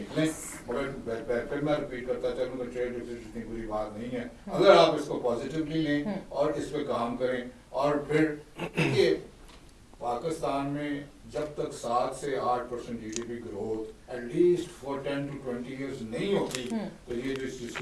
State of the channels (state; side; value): identical; both; correlation 1.00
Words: मगर फिर मैं रिपीट करता चलूँ कि ट्रेड डिफिसिट इतनी बुरी बात नहीं है अगर आप इसको पॉजिटिवली लें और इस पे काम करें। और फिर ये पाकिस्तान में जब तक 7 से 8% GDP growth at least for 10 to 20 years नहीं होती तो ये